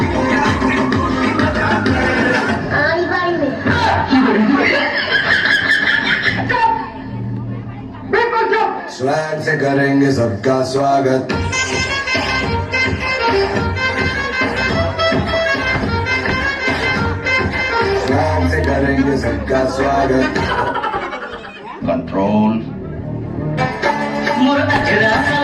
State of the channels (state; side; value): identical; both; correlation 1.00